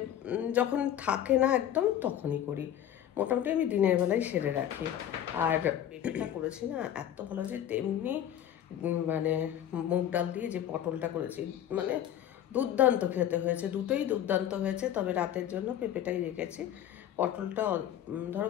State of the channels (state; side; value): quieter; right; 10.8 dB